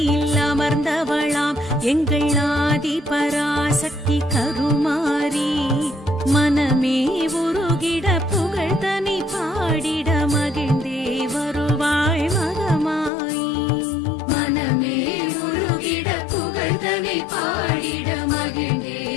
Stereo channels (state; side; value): drops out; right; at 13.1 s